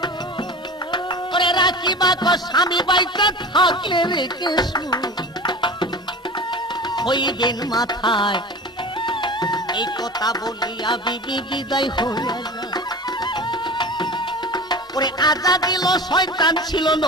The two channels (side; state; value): both; normal; correlation 0.34